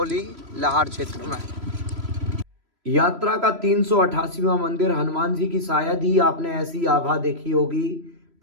लाहार क्षेत्र में। यात्रा का 388वां मंदिर हनुमान जी की शायद ही आपने ऐसी आभा देखी होगी।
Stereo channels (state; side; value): late; left; 3.0 ms